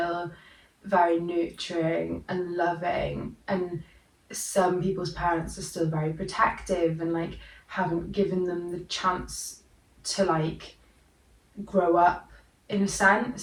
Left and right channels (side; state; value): both; identical; correlation 1.00